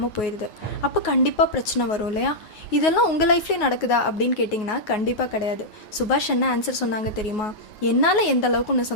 போயிடுது. அப்போ கண்டிப்பாக பிரச்சனை வரும் இல்லையா? இதெல்லாம் உங்கள் லைஃப்லேயே நடக்குதா அப்படின்னு கேட்டிங்கன்னா கண்டிப்பாக கிடையாது. சுபாஷ் என்ன ஆன்சர் சொன்னாங்க தெரியுமா? என்னால் எந்த அளவுக்கு உன்னை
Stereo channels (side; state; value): right; late; 9.4 ms